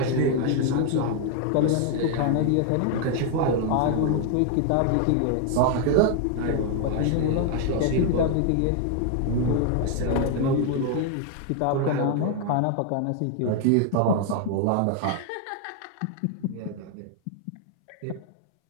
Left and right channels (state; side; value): different; both; correlation 0.00